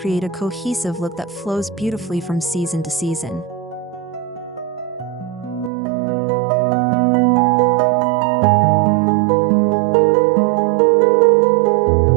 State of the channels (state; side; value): drops out; left; at 5.7 s